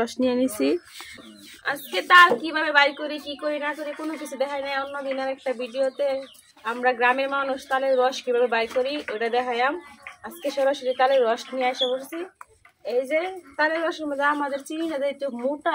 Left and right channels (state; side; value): identical; both; correlation 1.00